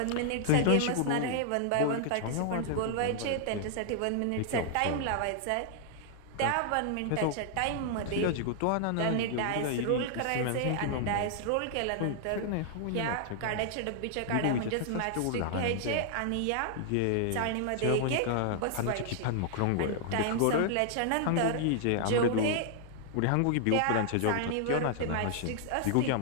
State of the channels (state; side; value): different; both; correlation -0.01